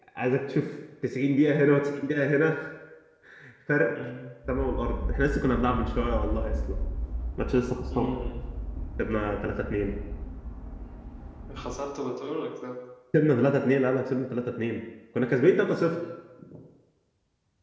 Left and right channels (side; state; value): both; identical; correlation 1.00